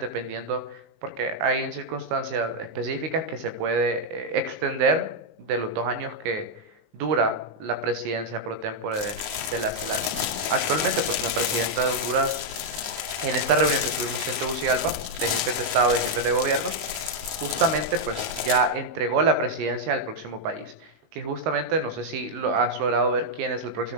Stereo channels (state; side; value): late; left; 19 ms